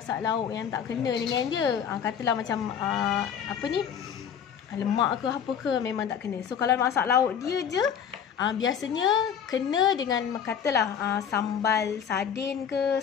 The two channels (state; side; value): quieter; right; 8.0 dB